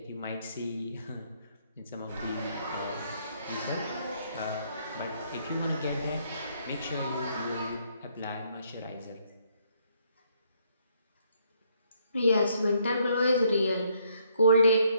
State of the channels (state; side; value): inverted; both; correlation -0.70